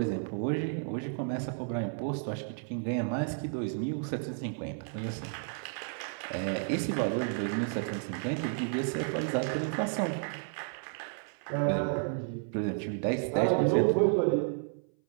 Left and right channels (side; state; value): left; silent; 56 dB below the other